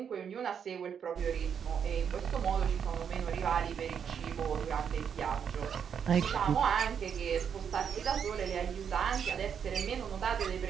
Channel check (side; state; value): left; quieter; 7.6 dB